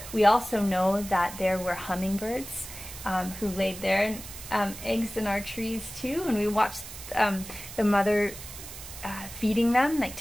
we also know that there were hummingbirds who laid their eggs in our trees too, and we watched the mother feeding them, like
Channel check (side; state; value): right; noise; hiss, 12 dB below the sound